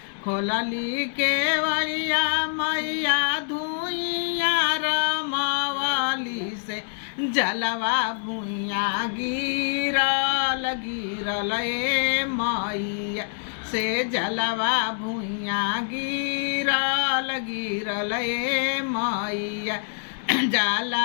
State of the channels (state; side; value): silent; right; digital silence